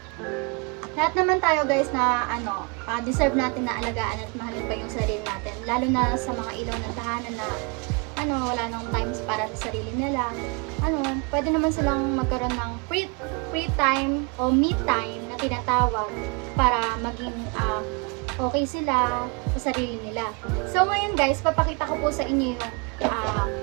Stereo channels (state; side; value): quieter; left; 31.8 dB